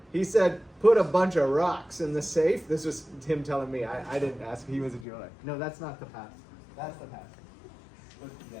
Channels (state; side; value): drops out; right; at 5.1 s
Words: He said, put a bunch of rocks in the safe. This was him telling me. I didn't ask. He was a jeweler. No, that's not the past. That's the past.